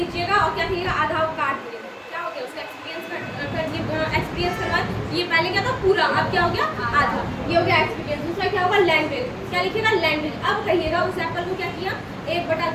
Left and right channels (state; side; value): identical; both; correlation 1.00